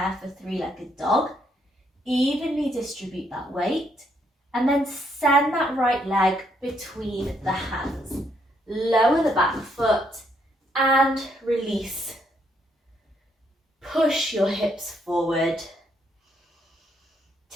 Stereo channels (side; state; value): both; normal; correlation 0.73